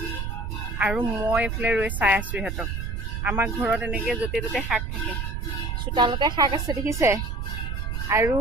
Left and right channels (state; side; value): noise; right; rumble, 3 dB below the sound